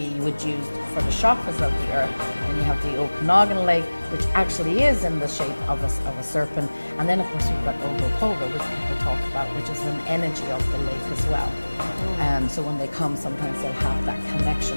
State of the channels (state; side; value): inverted; both; correlation -1.00